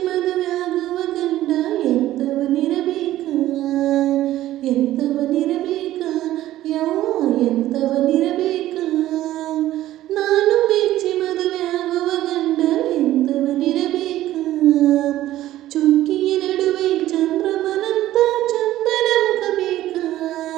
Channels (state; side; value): quieter; left; 14.3 dB